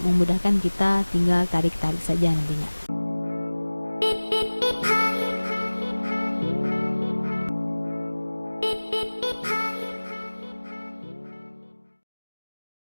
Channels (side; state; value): both; inverted; correlation -1.00